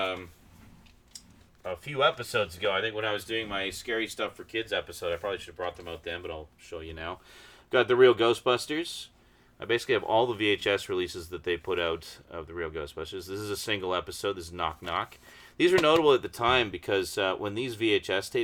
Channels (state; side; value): identical; both; correlation 1.00